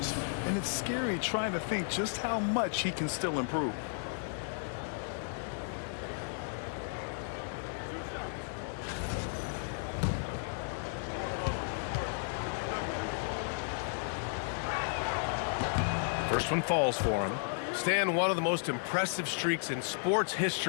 and it's scary trying to think just how much he can still improve. First one falls for him. Stan, one of the most impressive streaks in sports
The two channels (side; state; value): right; silent; digital silence